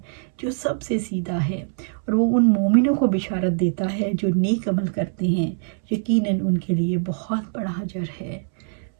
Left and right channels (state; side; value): silent; left; 63 dB below the other